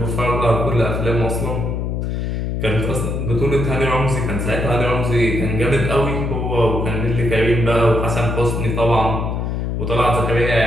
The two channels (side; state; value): left; noise; hum, 1 dB below the sound